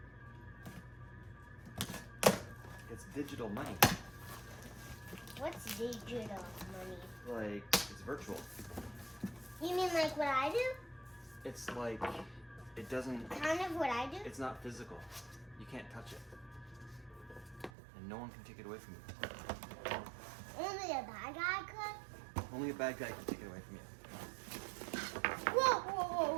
It's digital money. What's digital money? Like, it's virtual. You mean like what I do? It's like, it doesn't, Kind of what I do? it's not physical. You can't touch it. And no one can take it away from you. Only a bad guy could? Only a bad guy can take it away from you. Whoa, whoa,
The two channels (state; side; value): drops out; left; at 17.7 s